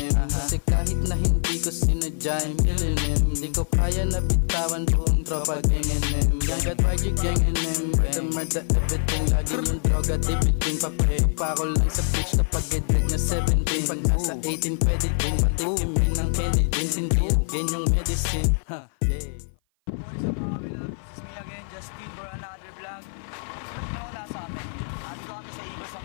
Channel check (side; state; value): right; silent; 56 dB below the other